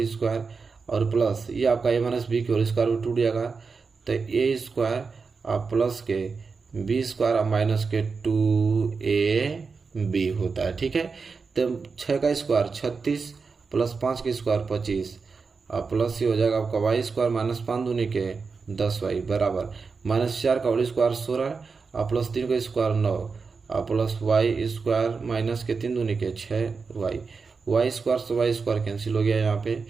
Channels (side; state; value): left; quieter; 4.9 dB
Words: स्क्वायर और प्लस ये आपका a माइनस बी की होल स्क्वायर टूट जाएगा तो a स्क्वायर और प्लस के b स्क्वायर माइनस के 2ab होता है। ठीक है, तो 6 का स्क्वायर 36 प्लस 5 का स्क्वायर 25 और प्लस ये हो जाएगा आपका y स्क्वायर माइनस 5 दूनी के 10y बराबर -4 का होल स्क्वायर 16 और प्लस 3 का स्क्वायर 9 और प्लस y स्क्वायर माइनस के 3 दूनी के 6y, y स्क्वायर से y स्क्वायर कैंसिल हो गया। यहाँ पे